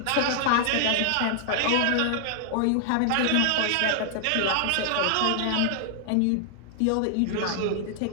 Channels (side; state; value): both; different; correlation 0.00